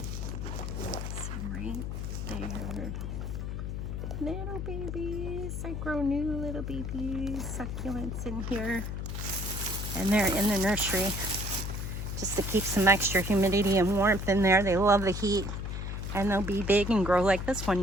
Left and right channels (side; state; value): left; noise; hum, 4 dB below the sound